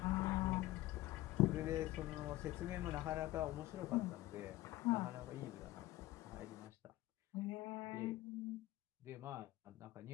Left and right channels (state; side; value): quieter; right; 17.0 dB